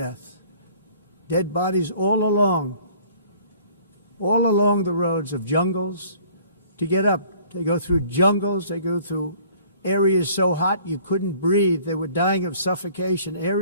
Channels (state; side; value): inverted; both; correlation -0.54